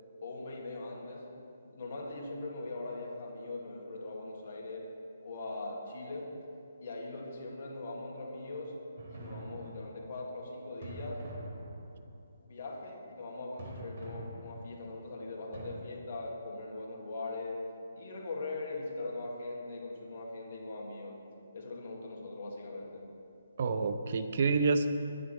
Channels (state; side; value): inverted; both; correlation -0.75